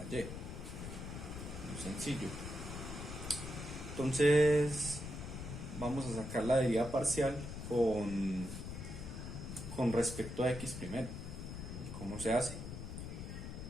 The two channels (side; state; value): left; noise; rumble, 7 dB below the sound